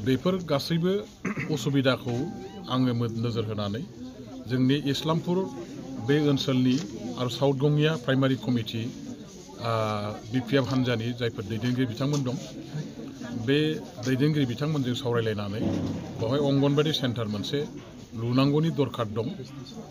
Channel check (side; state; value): both; identical; correlation 1.00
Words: बेफोर गासैबो उसुबिदाखौ आङो नोजोर होनानै जोंनि इस्लामपुर बे ओनसोलनि आरो साउथ गंगिया प्राइमारि कमिटि बिपिएफ हान्जानि जायफोर दैदेनगिरि बिथांमोन दं बे दैदेनगिरि बिथांमोनजों सावरायलायनानै बेवहाय अंगनबादि सेन्टार मोनसे लुनांगौनि दरखार दं